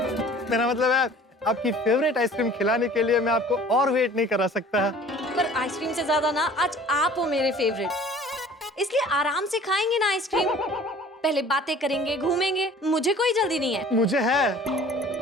मेरा मतलब है आपकी फेवरेट आइसक्रीम खिलाने के लिए मैं आपको और वेट नहीं करा सकता। पर आइसक्रीम से ज्यादा ना आज आप हो मेरे फेवरेट, इसलिए आराम से खाएंगे ना आइसक्रीम। पहले बातें करेंगे, घूमेंगे, मुझे कोई जल्दी नहीं है। मुझे है।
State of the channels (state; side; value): normal; both; correlation 0.48